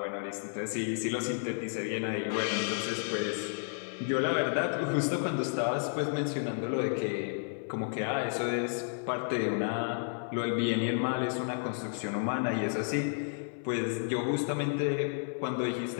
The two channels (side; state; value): right; silent; 56 dB below the other